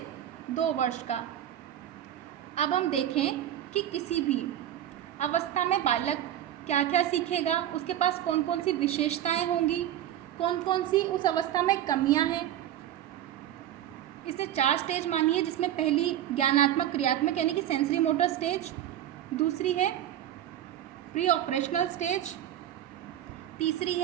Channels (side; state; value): left; quieter; 11.6 dB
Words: 2 वर्ष का। अब हम देखें कि किसी भी अवस्था में बालक क्या क्या सीखेगा, उसके पास कौन कौन सी विशेषताएं होंगी, कौन कौन सी उस अवस्था में कमियां हैं। इसने 4 स्टेज मानी है, जिसमें पहली ज्ञानात्मक क्रियात्मक यानी कि सेंसरी मोटर स्टेज, दूसरी है प्री ऑपरेशनल स्टेज, तीसरी